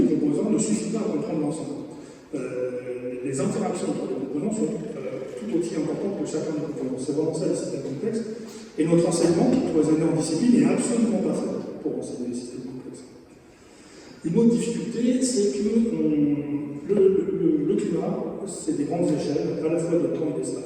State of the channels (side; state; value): both; identical; correlation 1.00